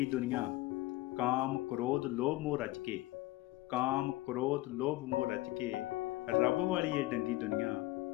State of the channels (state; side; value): quieter; right; 18.3 dB